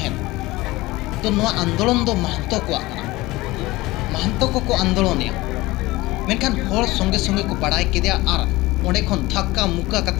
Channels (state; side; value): quieter; right; 19.8 dB